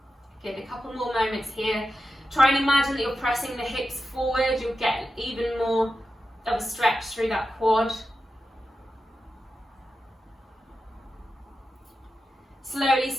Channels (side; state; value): both; normal; correlation 0.90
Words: Good, a couple more moments here. Try and imagine that you're pressing the hips forward. You'll get even more of a stretch through that quad. Slowly